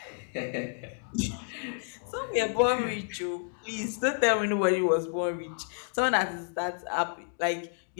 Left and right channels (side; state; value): right; silent; digital silence